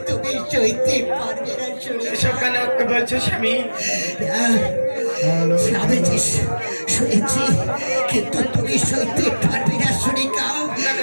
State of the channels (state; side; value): inverted; both; correlation -1.00